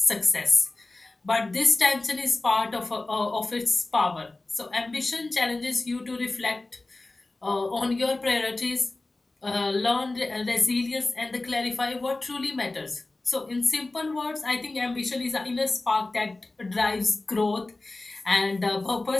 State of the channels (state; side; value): quieter; right; 3.1 dB